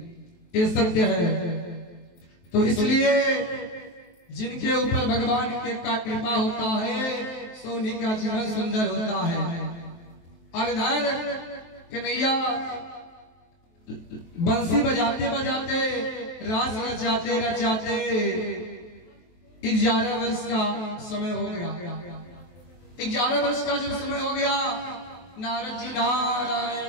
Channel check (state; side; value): late; right; 23 ms